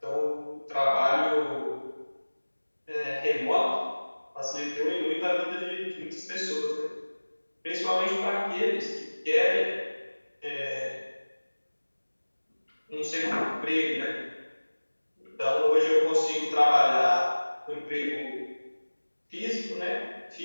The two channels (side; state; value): both; inverted; correlation -1.00